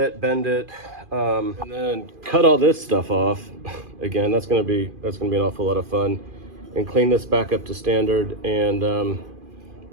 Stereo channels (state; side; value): late; left; 2.5 ms